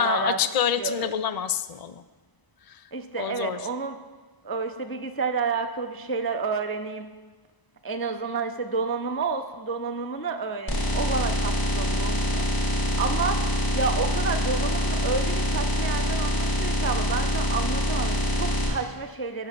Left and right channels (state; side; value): late; right; 1.0 ms